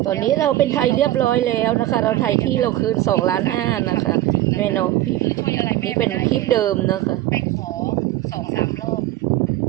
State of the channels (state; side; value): quieter; left; 14.9 dB